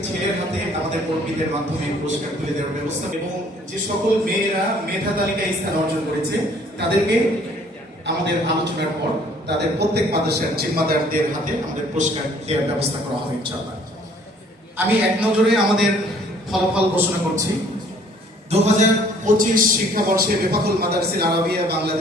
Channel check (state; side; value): normal; both; correlation 0.58